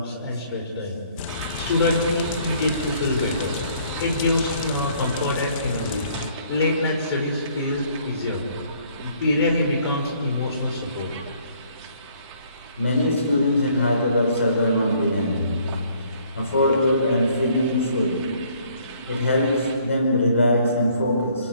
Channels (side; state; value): both; inverted; correlation -0.62